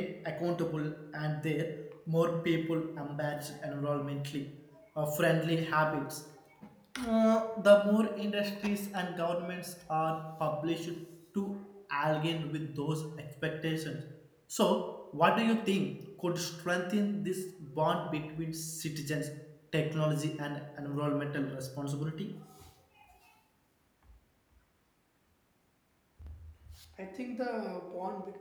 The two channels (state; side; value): identical; both; correlation 1.00